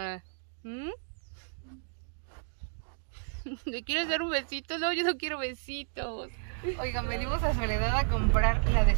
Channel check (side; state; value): left; silent; digital silence